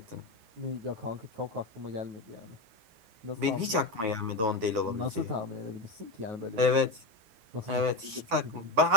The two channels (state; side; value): late; left; 9.1 ms